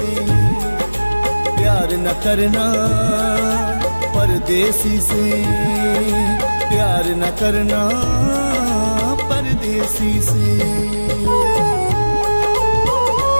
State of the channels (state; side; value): inverted; both; correlation -1.00